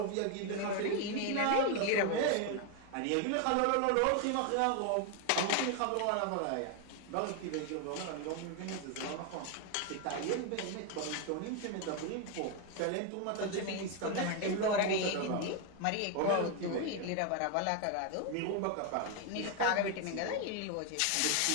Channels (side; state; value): both; different; correlation 0.01